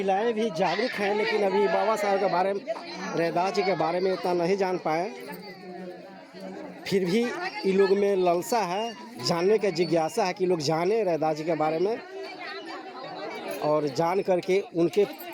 भी जागरूक हैं, लेकिन अभी बाबा साहब के बारे में, रैदास जी के बारे में इतना नहीं जान पाए। फिर भी इन लोग में लालसा है, जानने का जिज्ञासा है कि लोग जाने रैदास जी के बारे में और जान करके उनके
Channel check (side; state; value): both; identical; correlation 1.00